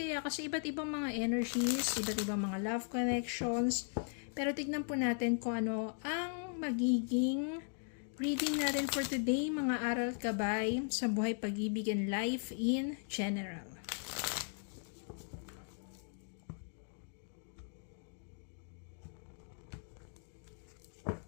kasi iba't ibang mga energies, iba't ibang mga love connections. Pero tignan po natin kung ano ang magiging reading natin for today, mga aral gabay sa buhay, pag-ibig, and life in general.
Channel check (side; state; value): right; silent; 52 dB below the other